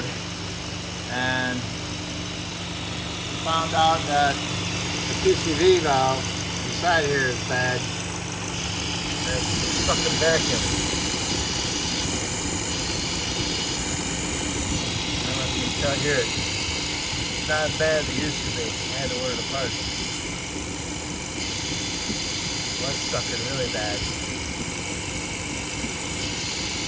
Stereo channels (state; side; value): identical; both; correlation 1.00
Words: and found out that the PCV valve inside here is bad. It's fucking vacuum. I don't know if you can tell here. It's not as bad as it used to be. I had to order the parts. It was sucking really bad.